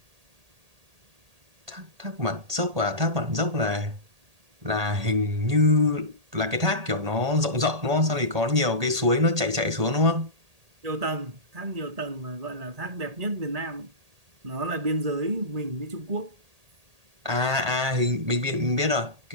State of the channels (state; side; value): late; left; 1.8 ms